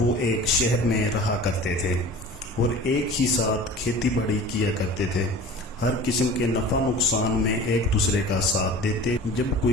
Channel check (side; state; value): both; normal; correlation 0.40